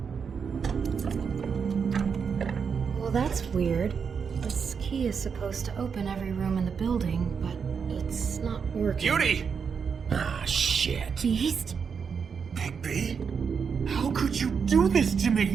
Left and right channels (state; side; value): quieter; left; 6.3 dB